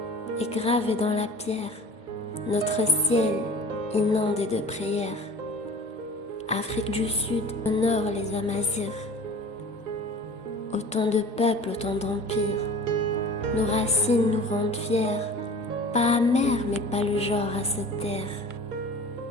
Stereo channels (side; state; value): both; normal; correlation 0.41